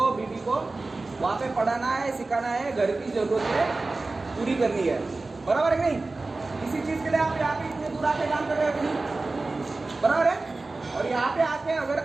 बीवी को वहाँ पे पढ़ाना है, सिखाना है, घर की जरूरतें पूरी करनी है, बराबर है नहीं? इसी चीज़ के लिए आप यहाँ पे इतने दूर आके काम कर रहे हो कि नहीं, बराबर है? और यहाँ पे आके अगर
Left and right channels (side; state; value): left; quieter; 3.4 dB